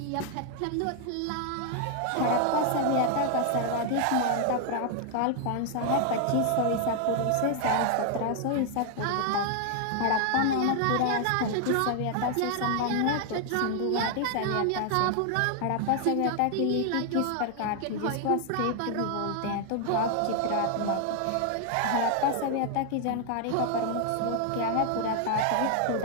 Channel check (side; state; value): both; different; correlation 0.00